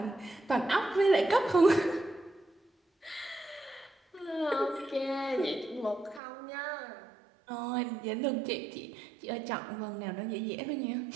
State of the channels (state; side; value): drops out; left; at 6.2 s